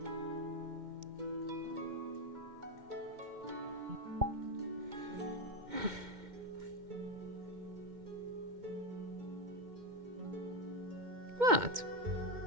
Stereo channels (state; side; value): late; left; 2.1 ms